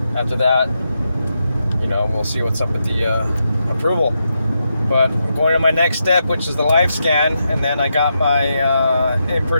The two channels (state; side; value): inverted; both; correlation -0.85